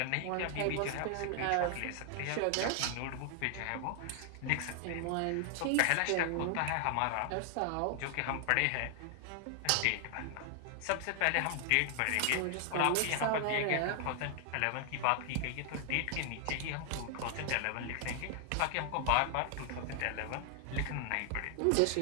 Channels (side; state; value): both; different; correlation 0.00